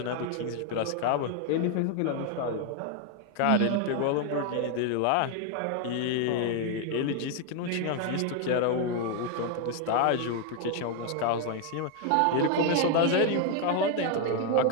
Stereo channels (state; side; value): different; both; correlation 0.01